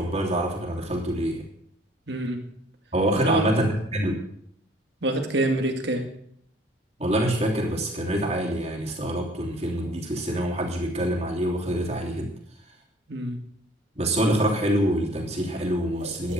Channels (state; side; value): normal; both; correlation 0.55